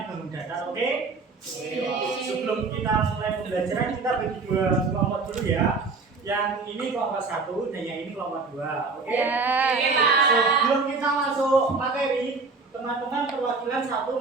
bangun datar, oke? Sebelum kita mulai pembelajaran, kita bagi dua kelompok dulu ya. Yang ini kelompok 1 dan yang ini kelompok 2, oke? Ya. Sebelum kita masuk materi, teman-teman perwakilan 1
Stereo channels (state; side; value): quieter; left; 4.2 dB